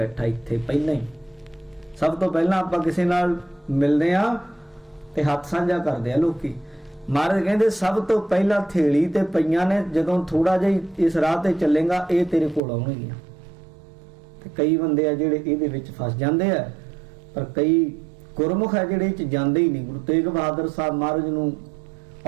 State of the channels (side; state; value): left; drops out; at 12.6 s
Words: ਇੱਥੇ ਪਹਿਲਾਂ ਹੀ। ਸਭ ਤੋਂ ਪਹਿਲਾਂ ਆਪਾਂ ਕਿਸੇ ਨਾਲ ਮਿਲਦੇ ਆ ਤੇ ਹੱਥ ਸਾਂਝਾ ਕਰਦੇ ਆ ਲੋਕੀ। ਮਹਾਰਾਜ ਕਹਿੰਦੇ ਸਭ ਤੋਂ ਪਹਿਲਾਂ ਥੇਲੀ ਤੇ ਪਈਆਂ ਨੇ, ਜਦੋਂ ਥੋੜਾ ਜਿਹਾ ਇਸ ਰਾਹ ਤੇ ਚੱਲੇਗਾ ਇਹ ਤੇਰੇ ਕੋਲ ਆਉਣਗੀਆਂ। ਤੇ ਕਈ ਬੰਦੇ ਆ ਜਿਹੜੇ ਇਹਦੇ ਵਿੱਚ ਫਸ ਜਾਂਦੇ ਆ, ਪਰ ਕਈ ਗੁਰਮੁਖ ਆ ਜਿਹੜੇ ਇਹ ਚ ਜਾਂਦੇ ਹੀ ਨਹੀਂ। ਗੁਰੂ ਤੇਗ ਬਹਾਦਰ ਸਾਹਿਬ ਮਹਾਰਾਜ ਨੂੰ